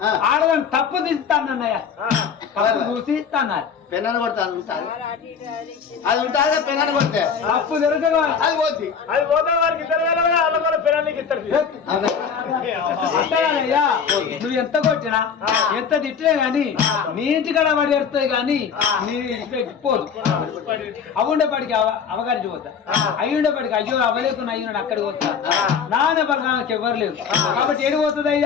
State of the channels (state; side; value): quieter; right; 6.6 dB